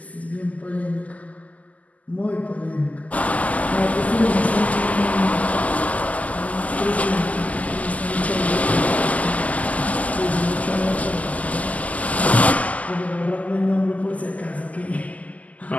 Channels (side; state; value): right; late; 0.073 ms